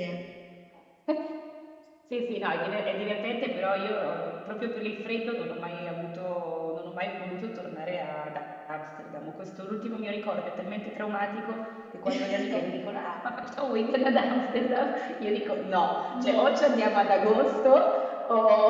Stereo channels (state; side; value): identical; both; correlation 1.00